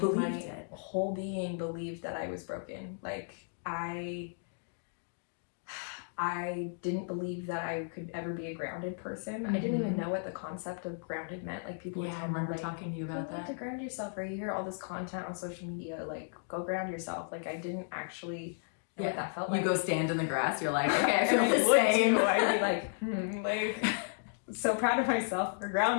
my whole being believed that I was broken. Like, I didn't believe that I could ever be a grounded person. I didn't even know what the concept of grounded meant. Like, people would tell me, I remember like, talking to you about you need that. to ground yourself, or you hear all this content on social media, like, go ground yourself. Like, I didn't actually know what that felt like. You go stand in the grass, you're like, okay, I feel and the same. I'd be like, so proud of myself for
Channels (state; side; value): silent; right; digital silence